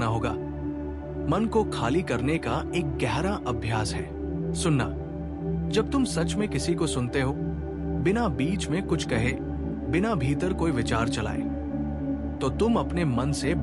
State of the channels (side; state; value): both; identical; correlation 1.00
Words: होगा। मन को खाली करने का एक गहरा अभ्यास है सुनना। जब तुम सच में किसी को सुनते हो, बिना बीच में कुछ कहे, बिना भीतर कोई विचार चलाए, तो तुम अपने मन से